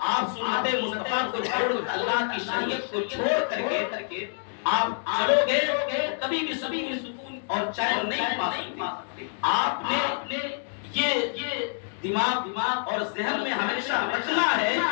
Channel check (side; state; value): right; silent; 60 dB below the other